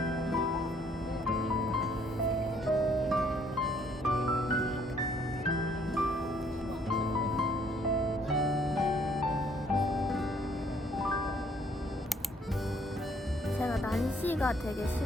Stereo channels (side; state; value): both; normal; correlation 0.64